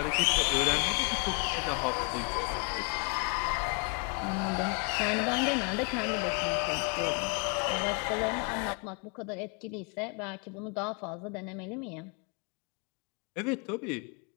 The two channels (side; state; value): right; quieter; 36.6 dB